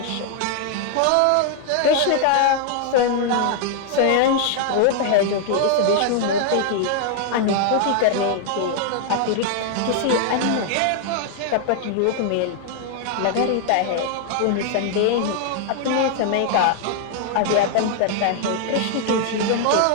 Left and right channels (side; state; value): both; different; correlation 0.00